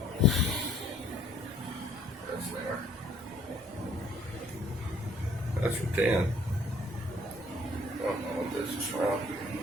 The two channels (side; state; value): both; normal; correlation 0.59